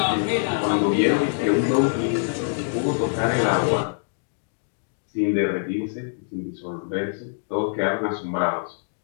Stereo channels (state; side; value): silent; right; digital silence